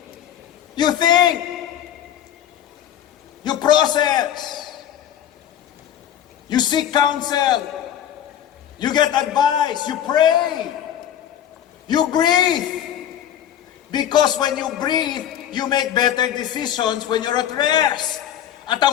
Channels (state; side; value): quieter; right; 10.5 dB